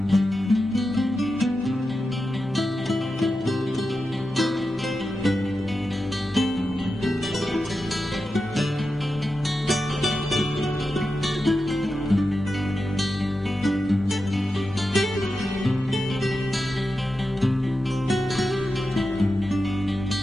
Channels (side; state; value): both; normal; correlation 0.90